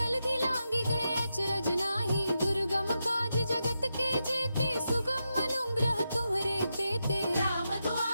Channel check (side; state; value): both; inverted; correlation -0.87